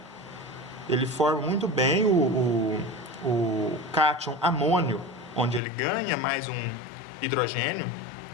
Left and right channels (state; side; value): drops out; right; at 5.6 s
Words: Ele forma muito bem o cátion amônio, onde ele ganha mais um hidrogênio,